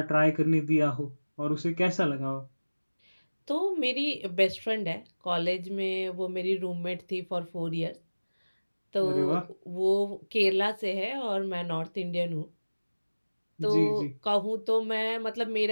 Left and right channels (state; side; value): inverted; both; correlation -1.00